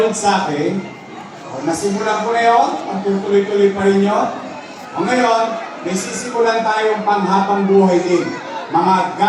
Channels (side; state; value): both; identical; correlation 1.00